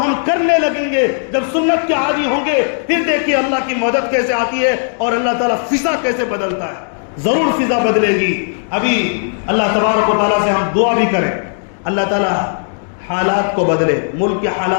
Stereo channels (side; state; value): right; silent; digital silence